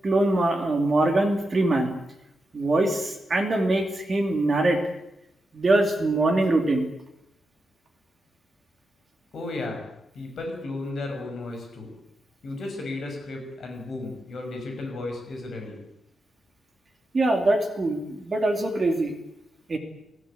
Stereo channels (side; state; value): both; normal; correlation 0.88